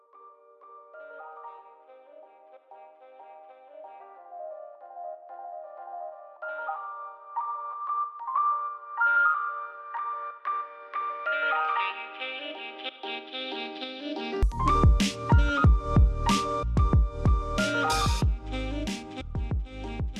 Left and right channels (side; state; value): both; identical; correlation 1.00